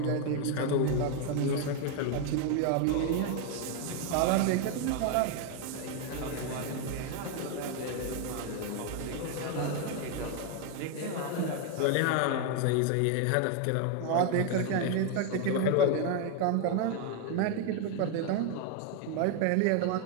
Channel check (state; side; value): different; both; correlation 0.01